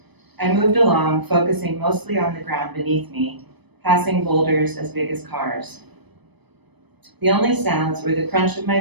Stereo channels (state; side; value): late; left; 0.99 ms